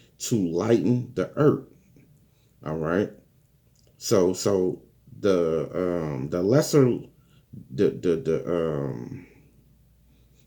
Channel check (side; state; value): both; identical; correlation 1.00